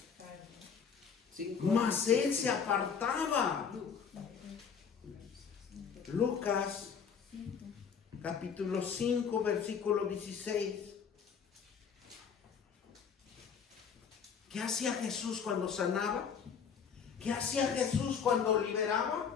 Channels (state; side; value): quieter; right; 6.7 dB